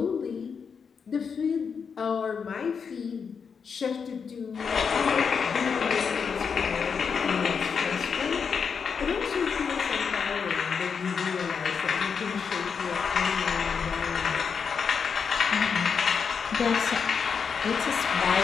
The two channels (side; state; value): right; quieter; 6.1 dB